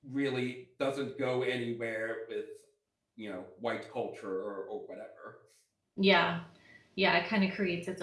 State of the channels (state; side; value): identical; both; correlation 1.00